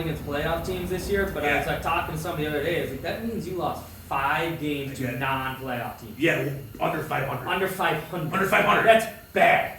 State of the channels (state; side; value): identical; both; correlation 1.00